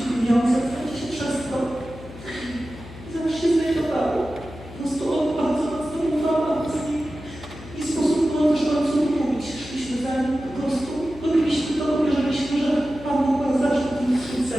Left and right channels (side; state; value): left; noise; hum, 15 dB below the sound